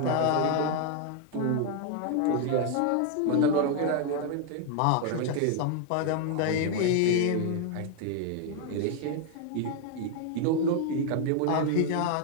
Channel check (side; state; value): both; different; correlation 0.00